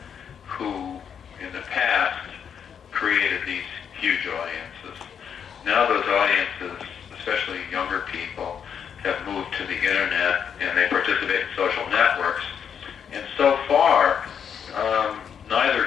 who in the past created these huge audiences. Now those audiences, especially younger people, have moved to the internet and they participate in social networks. And so far,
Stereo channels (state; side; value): quieter; right; 7.7 dB